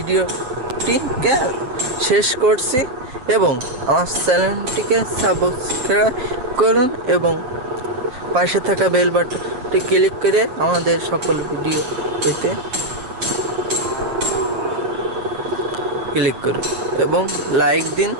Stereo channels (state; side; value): late; left; 7.8 ms